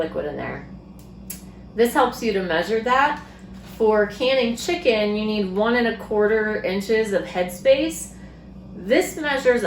in there. This helps you to measure that. For canning chicken, you need 1 1/4 inches of headspace. This measures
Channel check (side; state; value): both; identical; correlation 1.00